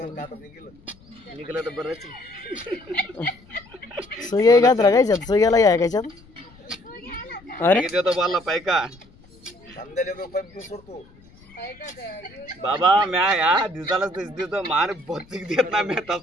निघलं तर बरंच सुया घात राखायच्यात सुयाला या कायच्यात अरे देतो बोलला पैका सोडतो बाबा म्या या दिवसाला देतो मार बत्तीक देत ना मी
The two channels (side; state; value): left; noise; rumble, 26 dB below the sound